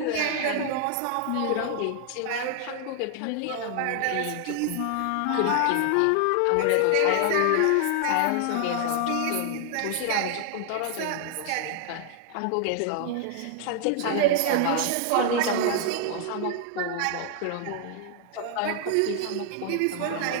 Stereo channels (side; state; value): both; different; correlation 0.00